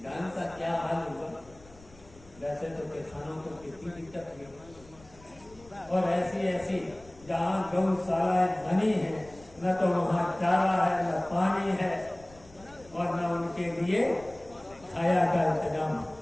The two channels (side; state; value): left; noise; rumble, 23 dB below the sound